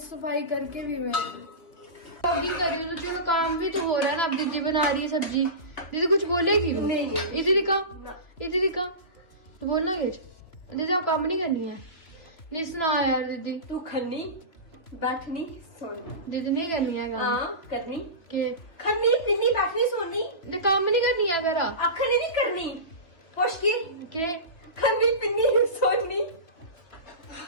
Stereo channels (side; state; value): right; late; 2.7 ms